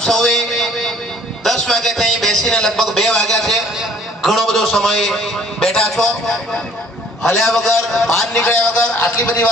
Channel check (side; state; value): both; normal; correlation 0.56